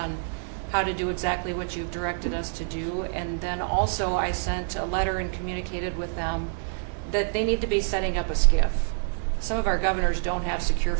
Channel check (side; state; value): left; silent; 60 dB below the other